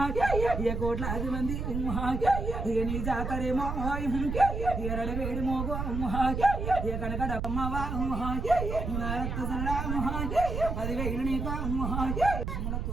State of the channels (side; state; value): right; noise; rumble, 3 dB below the sound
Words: ఇక 1,00,000 మంది ఇక నీ జాతరేమో ఇక రడవేడి మోగో ఇక కనక డమ్మవా రక్త సరడా 10,000 నీకు